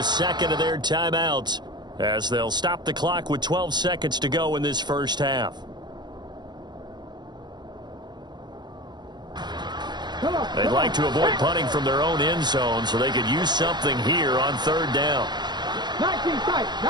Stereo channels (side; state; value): left; late; 0.21 ms